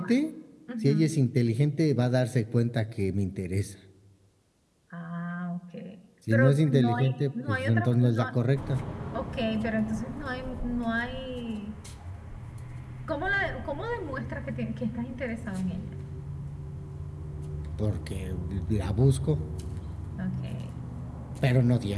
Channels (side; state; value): both; identical; correlation 1.00